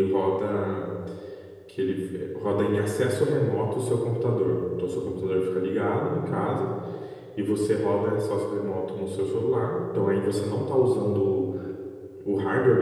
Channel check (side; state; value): both; identical; correlation 1.00